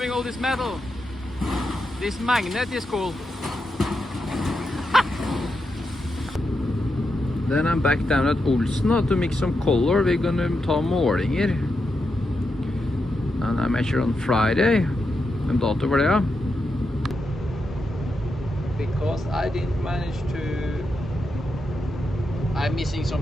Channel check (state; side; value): normal; both; correlation 0.86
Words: all this metal. This magnet is cool. Then I'm back down at Paulsen now to mix some color. We're gonna ta målinger. And I measure on Friday. En dato for det, ja. Because I didn't manage to... I'm missing